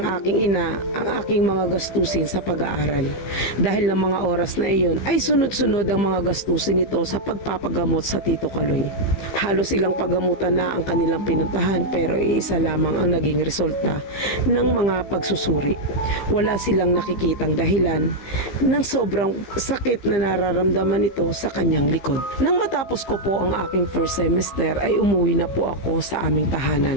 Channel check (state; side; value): late; right; 15 ms